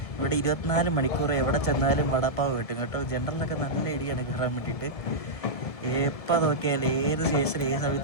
ഇവിടെ 24 മണിക്കൂർ എവിടെ ചെന്നാലും വടാപ്പാവ് കിട്ടും കേട്ടോ. ജനറലൊക്കെ നല്ല ഇടിയാണ് കയറാൻ വേണ്ടിയിട്ട്. എപ്പോൾ നോക്കിയാൽ ഏത് സ്റ്റേഷനിൽ ഏത്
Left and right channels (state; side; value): late; right; 1.7 ms